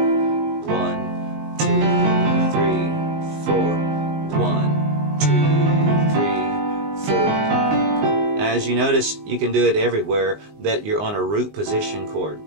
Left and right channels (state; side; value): late; left; 19 ms